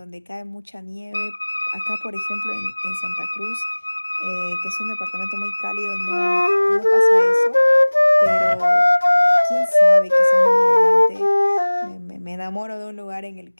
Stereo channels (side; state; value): both; inverted; correlation -1.00